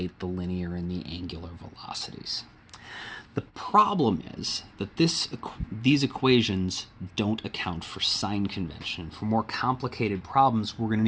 the linear and the angular velocities. The problem is that these equations don't account for sign convention. For more complicated problems, we're going to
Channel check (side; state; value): both; identical; correlation 1.00